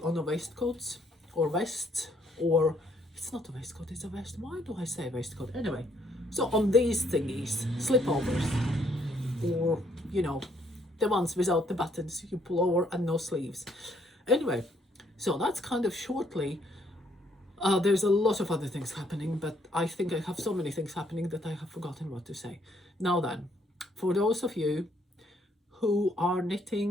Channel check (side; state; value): both; normal; correlation 0.69